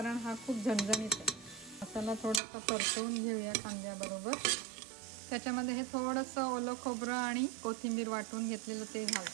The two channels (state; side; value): drops out; left; at 2.4 s